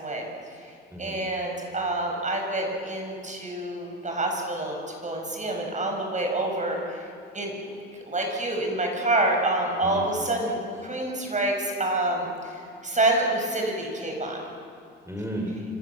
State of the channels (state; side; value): normal; both; correlation 0.08